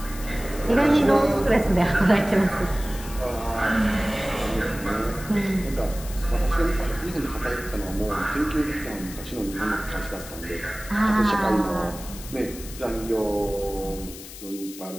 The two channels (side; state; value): left; noise; hiss, 14 dB below the sound